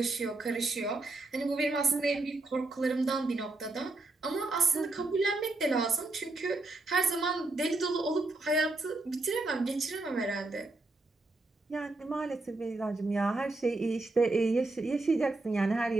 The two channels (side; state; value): left; quieter; 3.1 dB